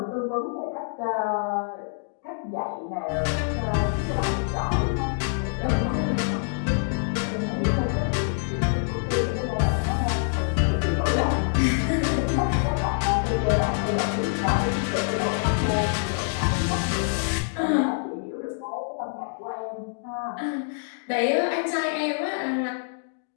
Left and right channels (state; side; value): silent; right; digital silence